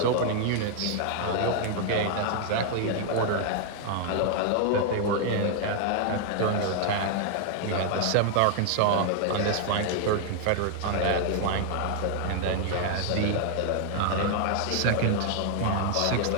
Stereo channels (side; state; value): both; different; correlation 0.00